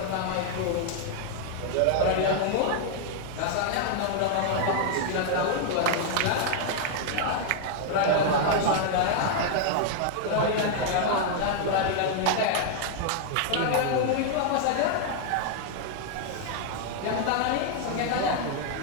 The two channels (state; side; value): different; both; correlation 0.00